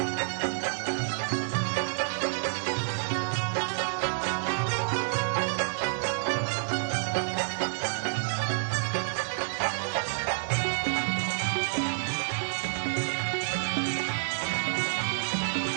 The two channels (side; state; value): left; silent; 59 dB below the other